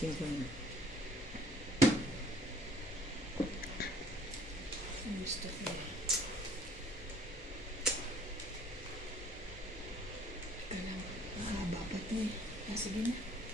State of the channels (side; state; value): both; normal; correlation 0.56